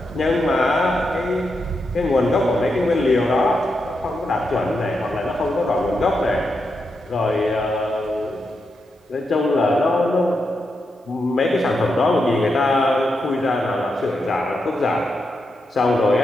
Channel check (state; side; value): normal; both; correlation 0.85